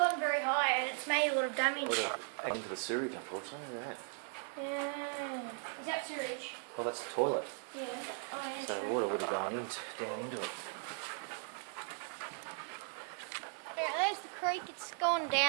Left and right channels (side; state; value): left; silent; 53 dB below the other